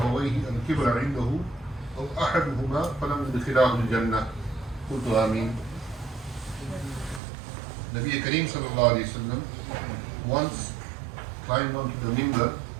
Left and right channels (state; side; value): drops out; left; at 7.2 s